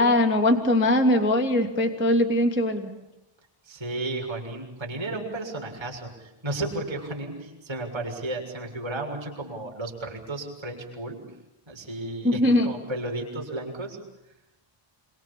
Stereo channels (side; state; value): left; late; 1.3 ms